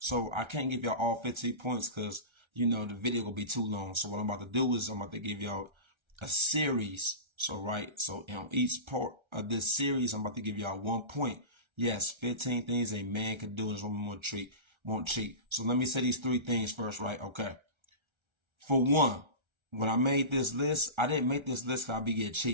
I can't give y'all all 15 points because the video will be too long. So what I'm about to do is I'm about to give y'all a series. So on each part of this series, I'm about to give y'all 1 point. Yes, 15 things a man can do and his woman won't cheat. So let me say these 3 things first, right? Okay. For one, when I made this list, I didn't make this list because I be getting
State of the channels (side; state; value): left; late; 1.3 ms